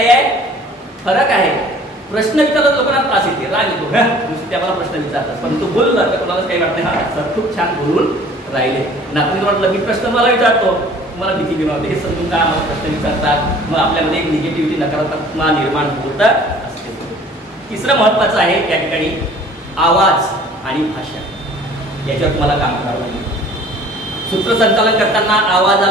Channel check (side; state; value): both; normal; correlation 0.50